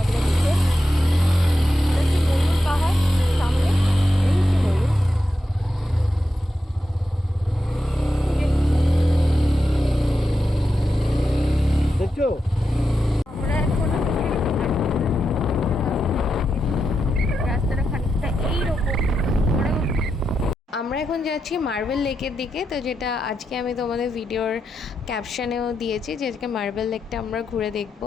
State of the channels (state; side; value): normal; both; correlation 0.87